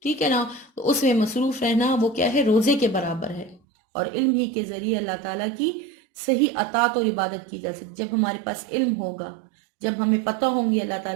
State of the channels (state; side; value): drops out; left; at 3.6 s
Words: ٹھیک ہے نا، تو اس میں مصروف رہنا وہ کیا ہے، روزے کے برابر ہے۔ اور علم ہی کے ذریعے اللہ تعالیٰ کی صحیح اطاعت اور عبادت کی جا سکتی۔ جب ہمارے پاس علم ہوگا، جب ہمیں پتہ ہوں گے اللہ